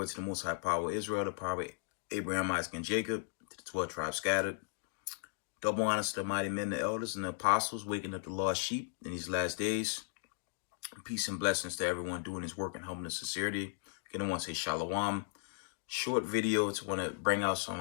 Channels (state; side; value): silent; right; digital silence